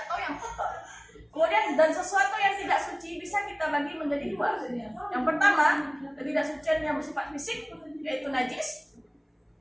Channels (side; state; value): both; identical; correlation 1.00